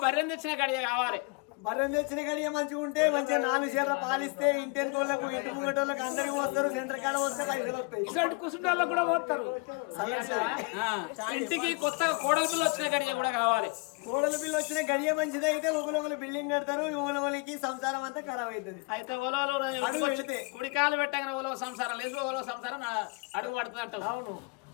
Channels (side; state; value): right; quieter; 30.3 dB